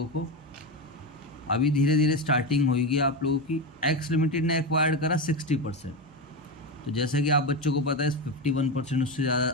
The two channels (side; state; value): both; normal; correlation 0.15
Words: को, अभी धीरे धीरे स्टार्टिंग होगी आप लोगों की। एक्स लिमिटेड ने एक्वायर्ड करा 60%, तो जैसा कि आप बच्चों को पता है 51% उससे ज़्यादा